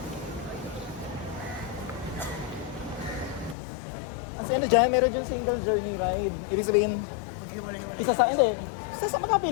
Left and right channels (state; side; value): drops out; right; at 3.6 s